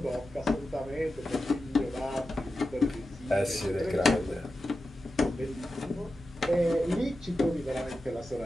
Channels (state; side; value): normal; both; correlation 0.92